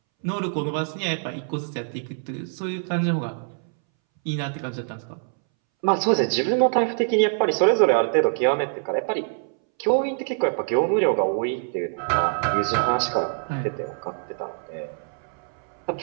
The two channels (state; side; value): silent; left; 62 dB below the other